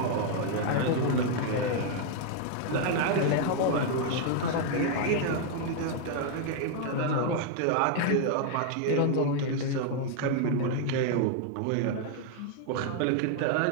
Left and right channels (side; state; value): both; different; correlation 0.00